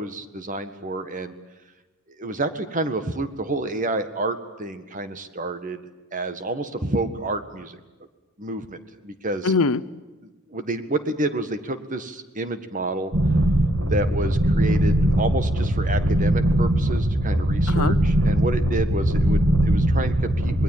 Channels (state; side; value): normal; both; correlation 0.67